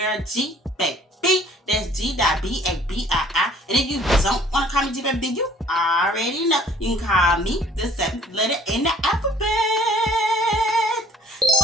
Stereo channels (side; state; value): both; normal; correlation 0.55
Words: Gbabii. That's Gbabii. And if you don't want to call me Gbabii, then you already know. You can call me the seventh letter in the alphabet.